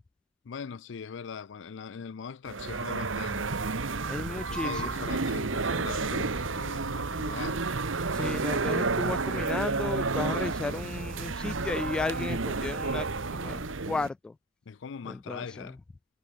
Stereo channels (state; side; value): normal; both; correlation 0.21